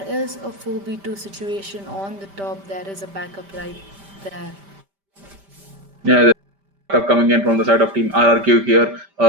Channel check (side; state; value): left; late; 5.1 ms